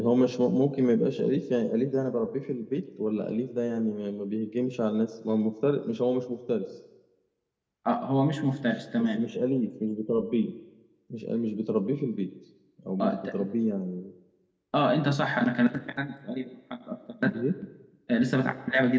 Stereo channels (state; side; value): identical; both; correlation 1.00